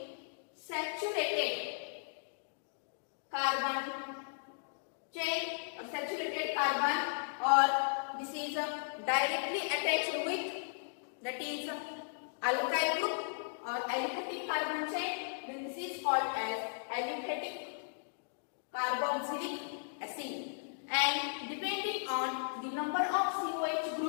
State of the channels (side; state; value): right; silent; digital silence